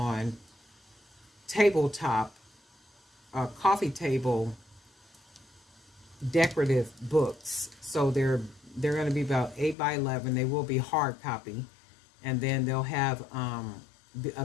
tabletop, coffee table decorative books. So they're going to be about 8 by 11. They will be hard copy, and then they'll have a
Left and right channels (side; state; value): right; drops out; at 9.8 s